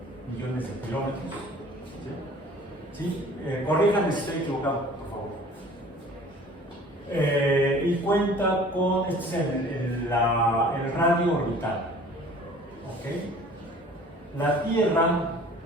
millones de kilómetros. ¿Sí? Corríjanme si estoy equivocado, por favor. Y cuenta con, este es el radio orbital. ¿Ok? La Tierra,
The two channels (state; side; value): normal; both; correlation 0.49